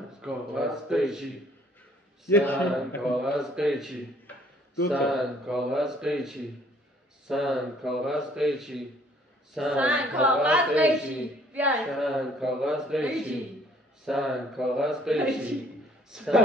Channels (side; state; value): both; normal; correlation 0.60